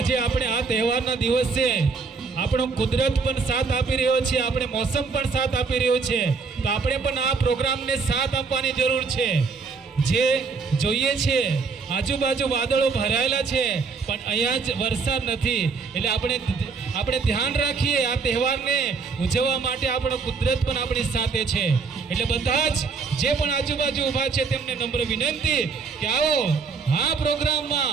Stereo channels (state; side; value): quieter; left; 4.9 dB